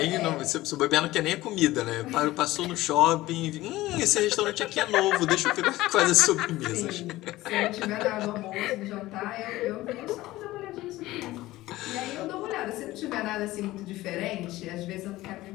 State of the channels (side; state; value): right; quieter; 17.4 dB